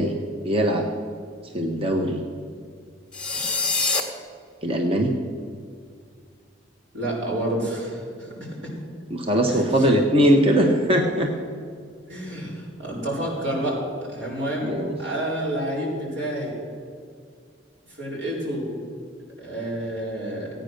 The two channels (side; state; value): both; normal; correlation 0.45